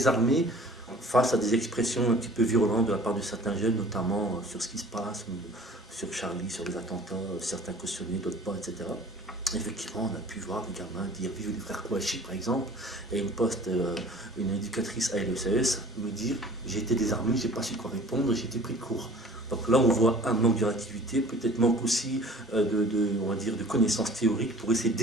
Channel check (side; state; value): both; normal; correlation 0.47